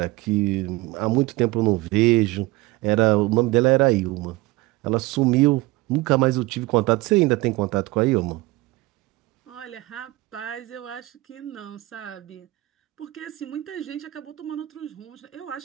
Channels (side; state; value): left; quieter; 20.3 dB